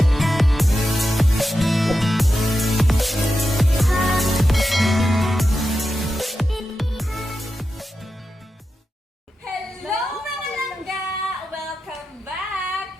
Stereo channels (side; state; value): both; normal; correlation 0.90